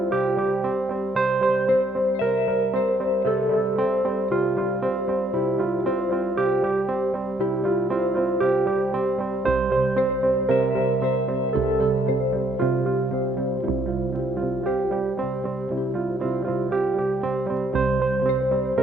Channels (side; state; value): both; normal; correlation 0.71